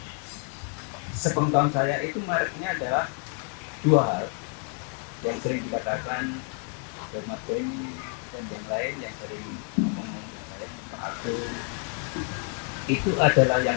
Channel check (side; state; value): right; quieter; 36.9 dB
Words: sepengetahuan saya itu mereknya adalah 2 hal yang sering dikatakan oleh Mas Benny dan yang lain yang sering ngomong dengan saya, Pak Agung. Itu adalah yang